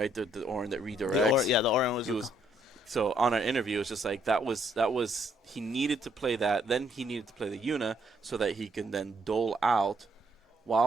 The Orin that redirects. The Orin was. So on our interview, it's just like that was he needed to play that. Then he needed to play the Yuna so that he can then dole out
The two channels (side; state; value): both; normal; correlation 0.70